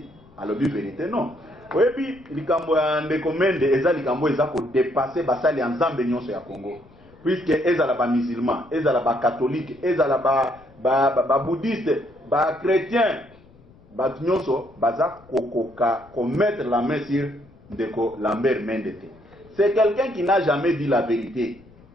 à le vérité non. Oyebi likambo ya ndekomende eza likambo eza ko dépasser basali ensemble nyonso ya Congo. Puisque ezala ba musulman, ezala ba catholique, ezala ba bouddhiste, ba chrétien, ba nyonso baza kokoka ko mettre la main sur ndeko Lambert Mendete. C'est quelqu'un qui n'a jamais dit la vérité.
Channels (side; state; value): left; noise; rumble, 26 dB below the sound